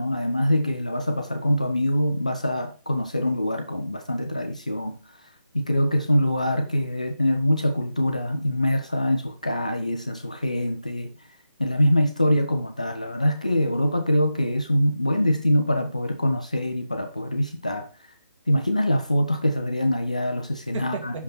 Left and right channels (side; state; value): both; inverted; correlation -0.91